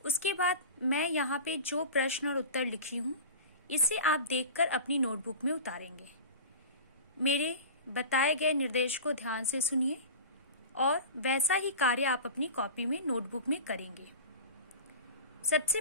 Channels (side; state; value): both; inverted; correlation -0.33